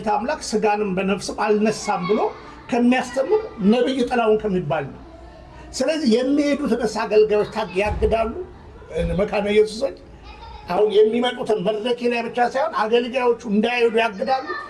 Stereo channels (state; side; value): identical; both; correlation 1.00